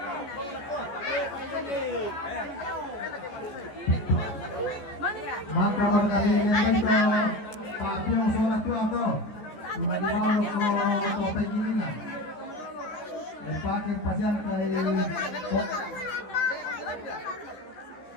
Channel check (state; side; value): late; right; 14 ms